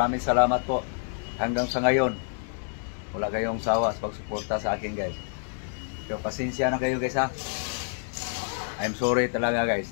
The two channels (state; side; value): silent; right; digital silence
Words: salamat po. Hanggang sa ngayon, wala kayong sawa sa pagsuporta sa akin guys. So pasensya na kayo guys ha. I'm sorry talaga